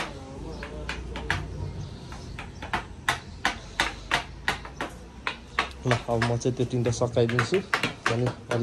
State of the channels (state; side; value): identical; both; correlation 1.00